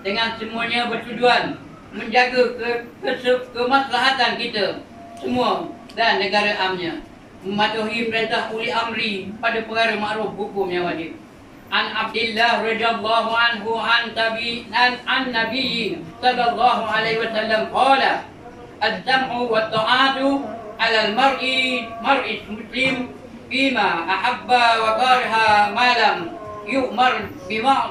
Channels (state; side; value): identical; both; correlation 1.00